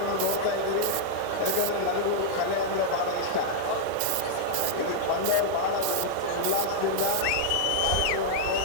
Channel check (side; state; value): both; different; correlation -0.02